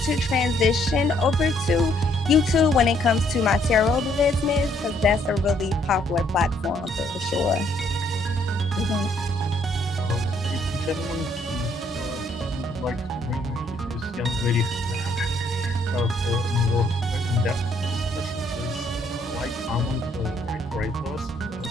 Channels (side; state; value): both; normal; correlation 0.68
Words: to transition over to YouTube when it comes to my tarot business, because that's a really popular platform for sure. Ladies and gentlemen, we would like to bring this young lady for more in-depth discussion. Please like, comment, write to us.